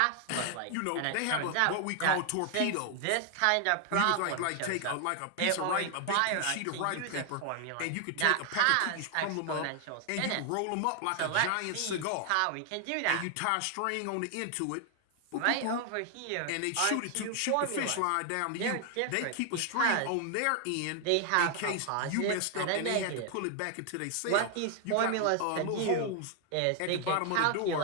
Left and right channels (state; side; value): different; both; correlation 0.00